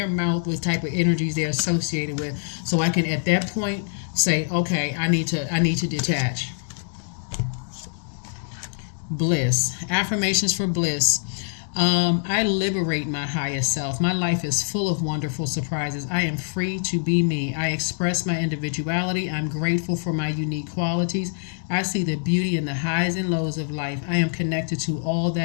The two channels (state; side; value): silent; right; digital silence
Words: mouth what type of energies they're associated with, so I can at that point say, okay, I need to detach. Bliss. Affirmations for bliss. I liberate my highest self. My life is full of wonderful surprises. I am free to be me. I express my individuality. I'm grateful for my unique qualities. I see the beauty in the highs and lows of life. I am connected to all